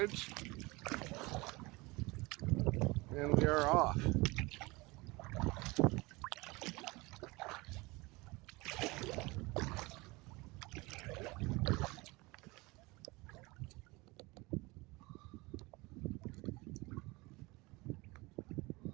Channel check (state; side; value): quieter; left; 23.7 dB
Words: And we are off.